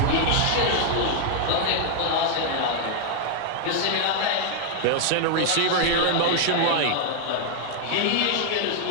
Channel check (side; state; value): both; different; correlation 0.00